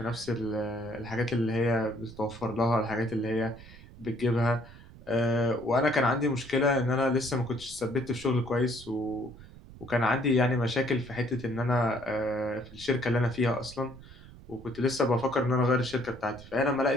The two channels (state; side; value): noise; right; rumble, 19 dB below the sound